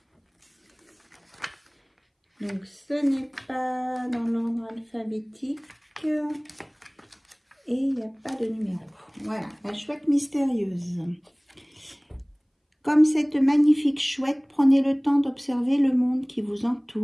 Donc, ce n'est pas dans l'ordre alphabétique et il n'y a pas de numéro. Voilà, la chouette mystérieuse. Comme cette magnifique chouette, prenez le temps d'observer le monde qui vous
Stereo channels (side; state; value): both; identical; correlation 1.00